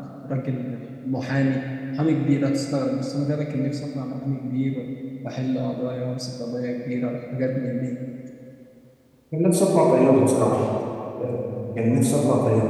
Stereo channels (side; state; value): both; identical; correlation 1.00